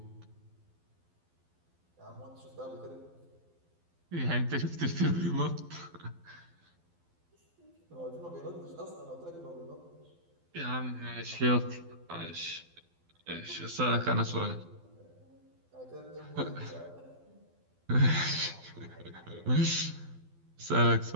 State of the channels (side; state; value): left; late; 12 ms